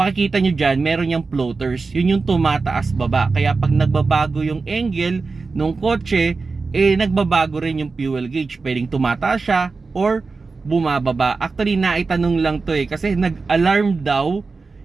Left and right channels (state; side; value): quieter; left; 4.2 dB